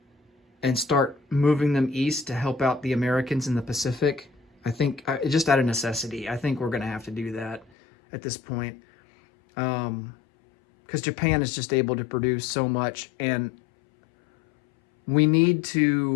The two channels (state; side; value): drops out; right; at 7.7 s